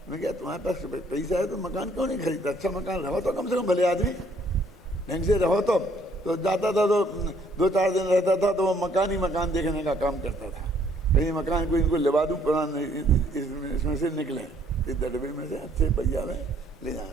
मैं क्या तुम्हारे पास पैसा है तो मकान क्यों नहीं खरीदता? अच्छा मकान रहो तो कम से कम, भले आदमी ढंग से रहो तो जाता था तो 2-4 दिन रहता था तो वो मकान ही मकान देखने का काम करता था। कहीं मकान को इनको लेवा दूँ, पुराना इसमें से निकले, इस डब्बे में से अच्छे पहिया में ले जाए।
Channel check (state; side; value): normal; both; correlation 0.64